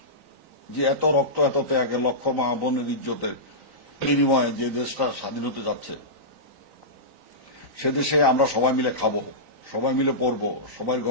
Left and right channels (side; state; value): left; late; 3.9 ms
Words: যে এত রক্ত, এত ত্যাগের, লক্ষ মা বোনের ইজ্জতের বিনিময়ে যে দেশটা স্বাধীন হতে যাচ্ছে, সে দেশে আমরা সবাই মিলে খাবো, সবাই মিলে পড়বো, সবাই